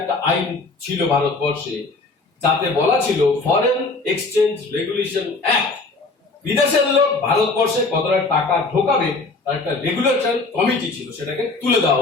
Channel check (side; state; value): right; quieter; 3.6 dB